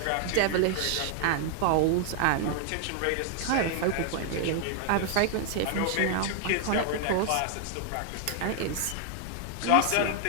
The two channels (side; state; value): both; different; correlation 0.00